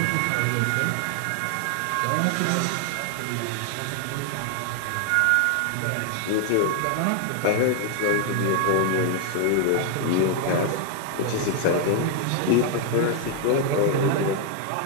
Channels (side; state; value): both; different; correlation 0.00